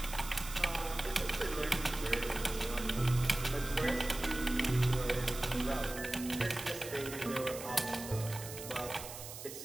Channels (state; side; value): noise; right; hiss, 11 dB below the sound